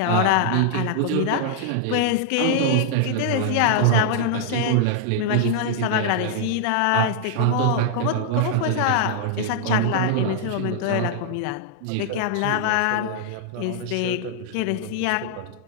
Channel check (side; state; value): both; different; correlation -0.01